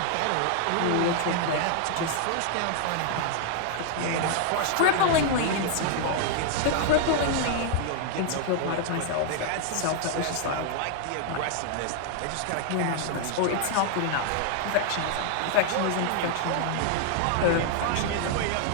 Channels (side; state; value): both; different; correlation 0.00